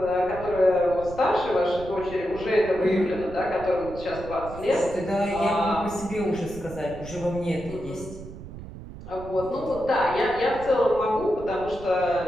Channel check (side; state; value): right; noise; rumble, 14 dB below the sound